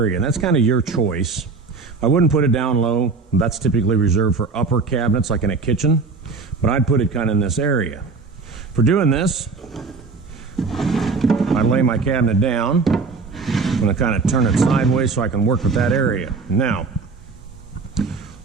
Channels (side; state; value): left; quieter; 4.4 dB